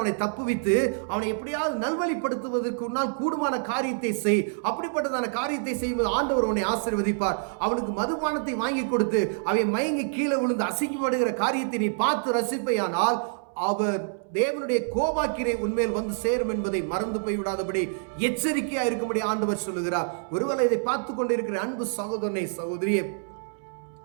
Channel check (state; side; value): silent; left; 60 dB below the other